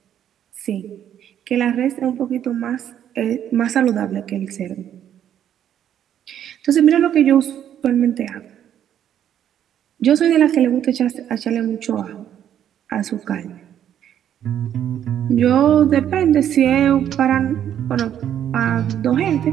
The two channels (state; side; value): quieter; left; 10.1 dB